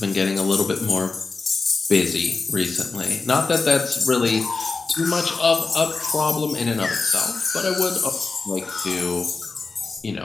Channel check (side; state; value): right; quieter; 4.0 dB